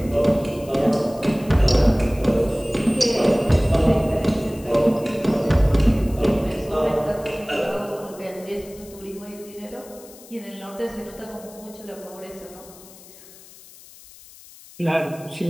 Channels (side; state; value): left; noise; hiss, 21 dB below the sound